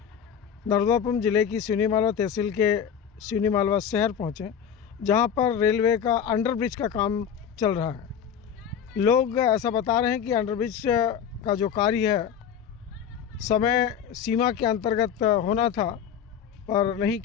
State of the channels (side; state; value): right; quieter; 8.2 dB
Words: नर्मदापुरम जिले की सिवनी मालवा तहसील के सिवनी मालवा शहर पहुँचे, जहां पर रेलवे का अंडरब्रिज का काम चल रहा है। लोग ऐसा बता रहे हैं कि अंडरब्रिज का जो कार्य है समय सीमा के अंतर्गत होना था पर नहीं